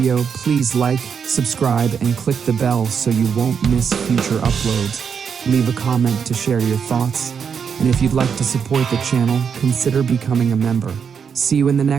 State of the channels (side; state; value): left; quieter; 6.8 dB